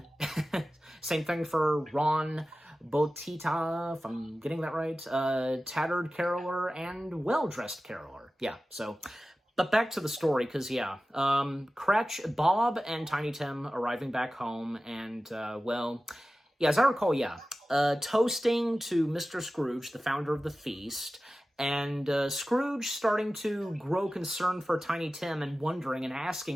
same thing for Ron Botita, if I'm getting that right, tattered caroler and well-dressed caroler, yeah, so... But back to the story, because, yeah, Bob and Tiny Tim arriving back home, and, well, yeah, as I recall, yeah, toasting to Mr. Scrooge, the founder of the feast, and Scrooge starting to grow concerned for Tiny Tim and wondering and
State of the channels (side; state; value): both; normal; correlation 0.95